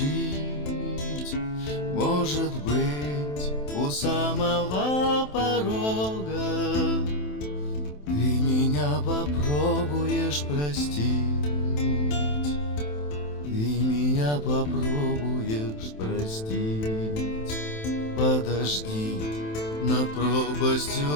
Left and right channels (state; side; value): late; right; 27 ms